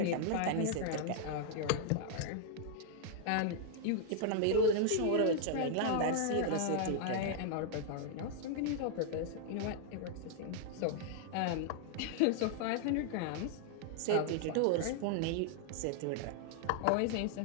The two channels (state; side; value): different; both; correlation 0.00